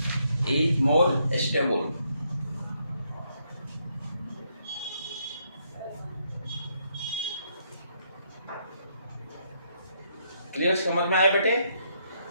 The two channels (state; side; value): inverted; both; correlation -0.74